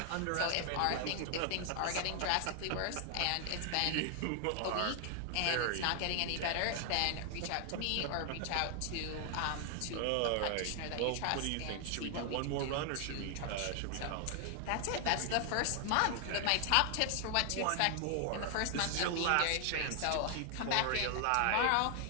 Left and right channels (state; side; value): different; both; correlation 0.00